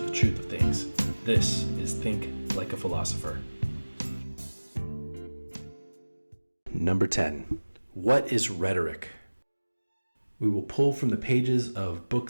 truth of things. This is Think Like a Philosopher. Number 10. What is rhetoric? We will pull from the pages of Book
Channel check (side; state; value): both; inverted; correlation -1.00